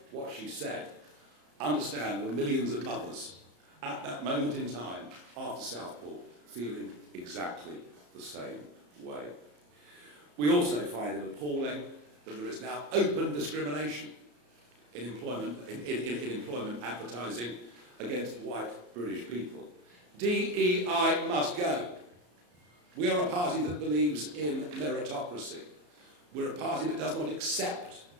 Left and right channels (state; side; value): late; left; 34 ms